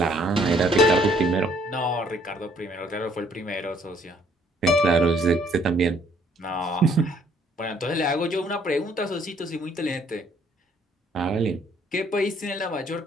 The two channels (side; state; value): both; normal; correlation 0.63